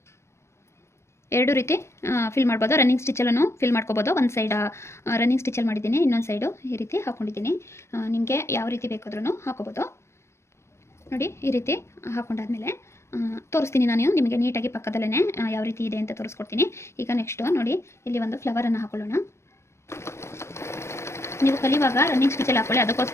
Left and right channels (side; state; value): right; late; 0.13 ms